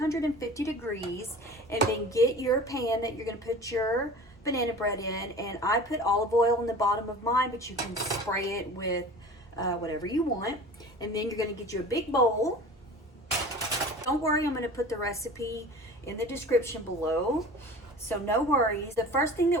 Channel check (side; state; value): both; normal; correlation 0.39